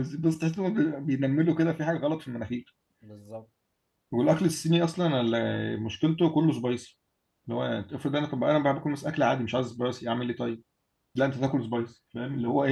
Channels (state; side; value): identical; both; correlation 1.00